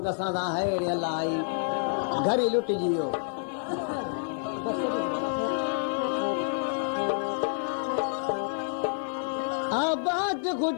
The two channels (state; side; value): silent; right; 59 dB below the other